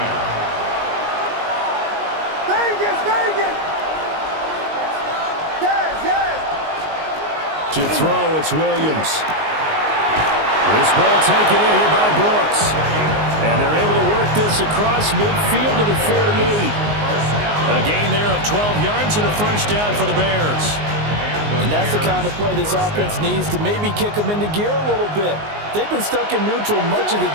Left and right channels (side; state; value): left; late; 19 ms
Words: To throw, it's Williams. This ball taken in here by Brooks. And they're able to work this across midfield to the 48. A gain there of 12 yards and a first down for the Bears. And that's the kind of play this offense needs to maybe kick them into gear a little bit. They've been stuck in neutral much of the